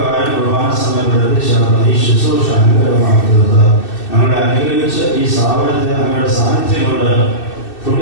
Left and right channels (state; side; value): late; right; 2.6 ms